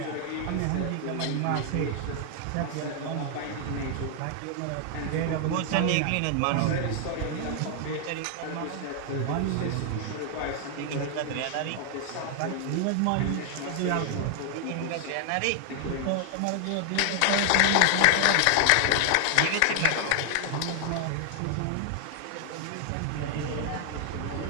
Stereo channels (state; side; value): different; both; correlation 0.00